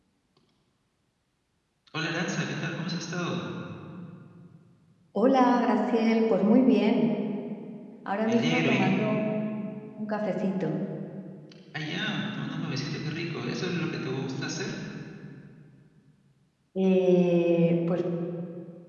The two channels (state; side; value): identical; both; correlation 1.00